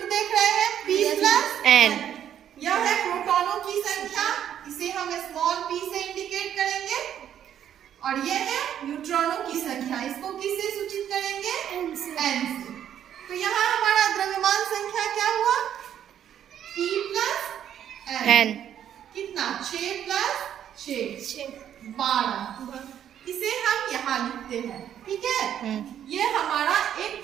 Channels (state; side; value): quieter; left; 10.0 dB